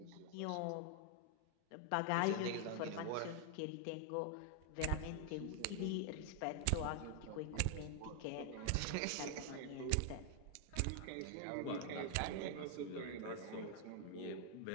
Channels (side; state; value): both; different; correlation 0.00